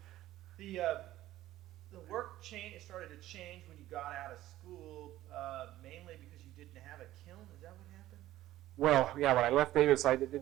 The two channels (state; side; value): quieter; left; 14.7 dB